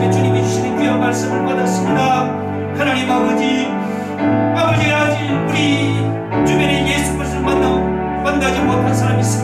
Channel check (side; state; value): both; identical; correlation 1.00